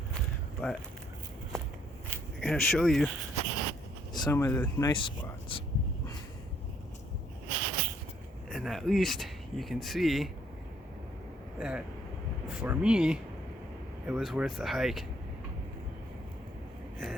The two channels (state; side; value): normal; both; correlation 0.67